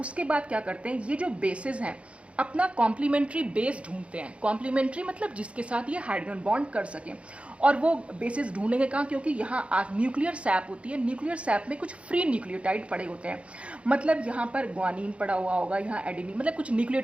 बाद क्या करते हैं, ये जो बेसेस हैं अपना कॉम्प्लीमेंट्री बेस ढूंढते हैं। कॉम्प्लीमेंट्री मतलब जिसके साथ ये हाइड्रोजन बॉन्ड कर सकें, और वो बेसिस ढूंढेंगे कहाँ, क्योंकि यहाँ न्यूक्लियर सैप होती है, न्यूक्लियर सैप में कुछ फ्री न्यूक्लियोटाइड पड़े होते हैं, मतलब यहाँ पर ग्वानिन पड़ा हुआ होगा, यहाँ एडिनिन, मतलब कुछ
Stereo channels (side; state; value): left; late; 0.061 ms